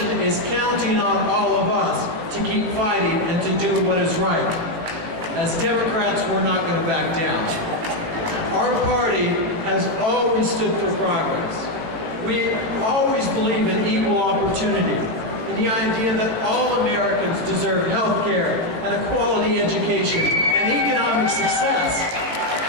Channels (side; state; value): left; late; 18 ms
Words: is counting on all of us to keep fighting and to do what is right. As Democrats, we're not going to back down. Our party has always stood for progress. We always believe in equal opportunity, in the idea that all Americans deserve health care and a quality education and economic success.